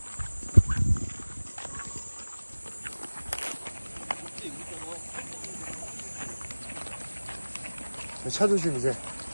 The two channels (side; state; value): both; inverted; correlation -1.00